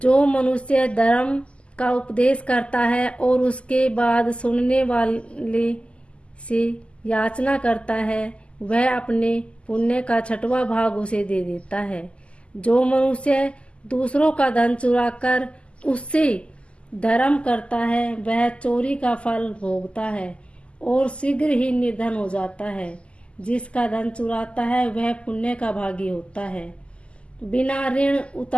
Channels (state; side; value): late; right; 0.055 ms